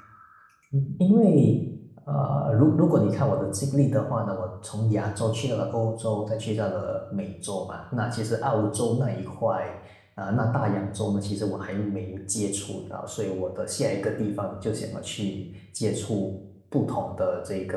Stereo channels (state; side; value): identical; both; correlation 1.00